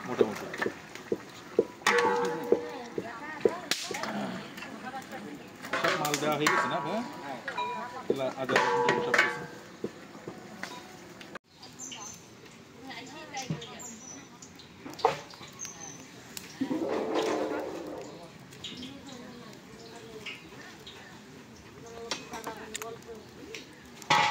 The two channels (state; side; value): identical; both; correlation 1.00